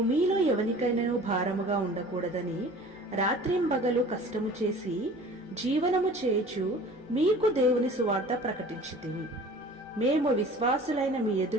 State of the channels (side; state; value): left; noise; hum, 29 dB below the sound